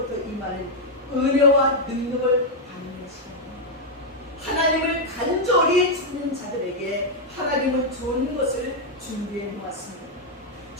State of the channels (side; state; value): both; normal; correlation -0.01